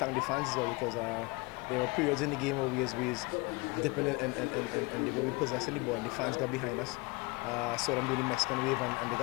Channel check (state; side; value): quieter; right; 27.0 dB